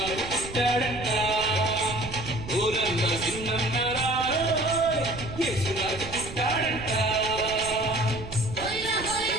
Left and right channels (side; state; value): right; noise; rumble, 11 dB below the sound